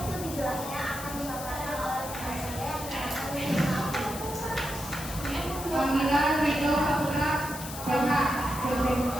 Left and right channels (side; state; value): left; noise; hiss, 10 dB below the sound